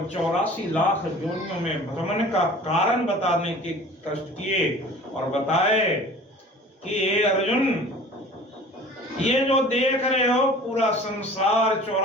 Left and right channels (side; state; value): both; normal; correlation 0.44